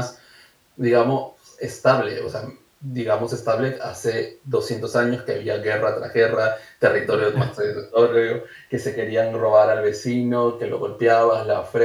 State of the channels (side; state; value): both; identical; correlation 1.00